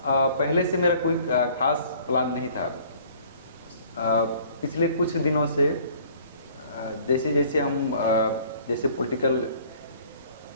पहले से मेरा कोई खास प्लान नहीं था। पिछले कुछ दिनों से जैसे जैसे हम जैसे पॉलिटिकल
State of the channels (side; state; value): both; inverted; correlation -0.54